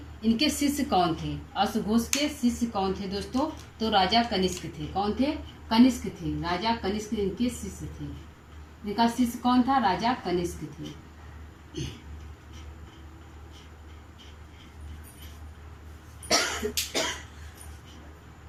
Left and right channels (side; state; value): both; identical; correlation 1.00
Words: इनके शिष्य कौन थे? अश्वघोष के शिष्य कौन थे दोस्तों? तो राजा कनिष्क थे। कौन थे? कनिष्क थे। राजा कनिष्क इनके शिष्य थे। इनका शिष्य कौन था? राजा कनिष्क थे।